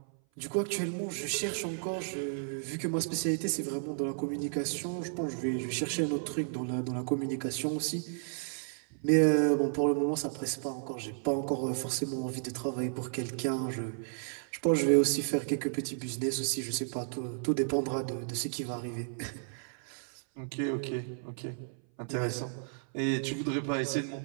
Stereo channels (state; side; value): silent; left; 56 dB below the other